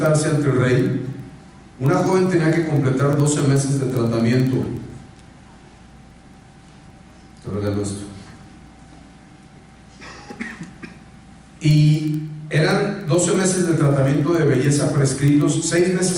ante el rey, una joven tenía que completar 12 meses de tratamiento. arreglo esto. Y eran 12 meses de tratamiento de belleza prescritos, 6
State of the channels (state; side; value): identical; both; correlation 1.00